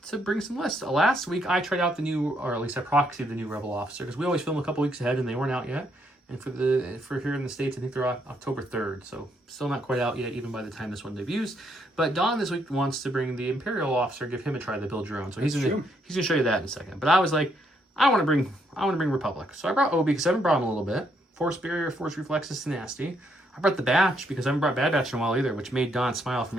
bring some lists. Last week I tried out the new, or at least I proxied the new Rebel Officer, because we always film a couple weeks ahead and they weren't out yet. And for here in the States, I think they're October 3rd, so still not quite out yet, even by the time this one debuts. But Don this week wants to bring the Imperial Officer, give him a try to build your own. So he's gonna show you that in a second. But I was like, I want to bring Republic. So I brought Obi because I haven't brought him a little bit. Force Barrier, Force Reflexes, Tenacity. I brought the Batch because I haven't brought Bad Batch in a while either, which made Don smile from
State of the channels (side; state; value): both; normal; correlation 0.73